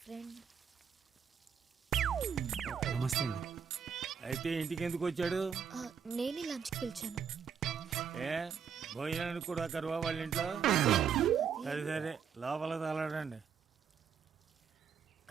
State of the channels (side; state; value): left; quieter; 7.3 dB